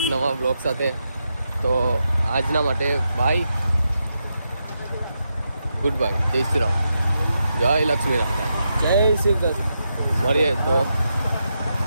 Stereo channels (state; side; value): inverted; both; correlation -0.85